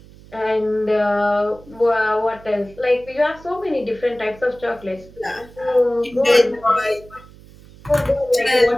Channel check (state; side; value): noise; right; hum, 22 dB below the sound